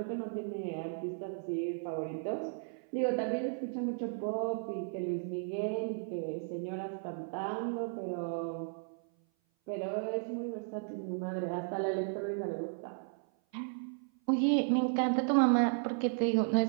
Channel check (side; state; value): left; silent; 55 dB below the other